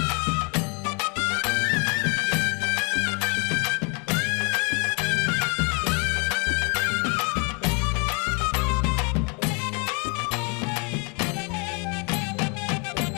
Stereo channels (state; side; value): quieter; right; 33.1 dB